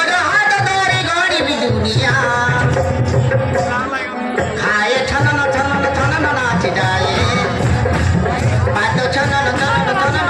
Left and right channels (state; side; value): identical; both; correlation 1.00